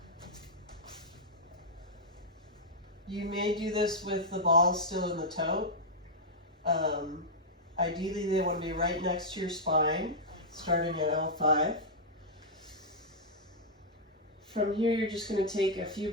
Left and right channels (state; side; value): normal; both; correlation -0.06